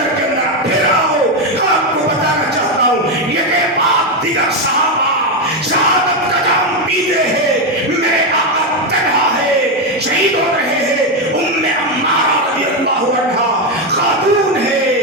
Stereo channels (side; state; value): both; normal; correlation 0.08